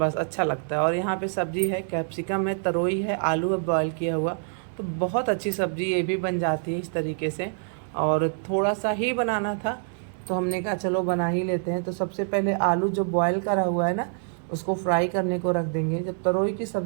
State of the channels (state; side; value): silent; left; 61 dB below the other